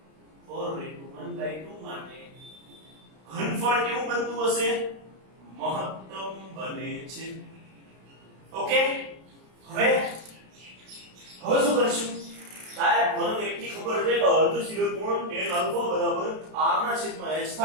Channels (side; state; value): left; late; 32 ms